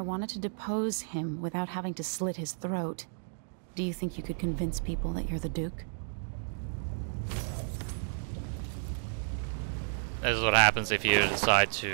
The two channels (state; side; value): silent; left; digital silence